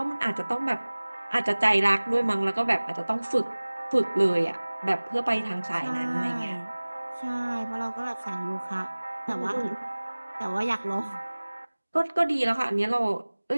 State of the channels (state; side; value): inverted; both; correlation -1.00